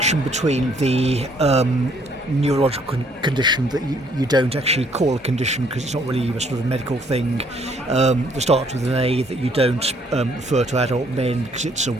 between the neurological condition that you don't actually call a condition because it's not really a sort of medical thing, that starts with an A, that you don't refer to adult men because it's a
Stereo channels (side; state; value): both; normal; correlation 0.65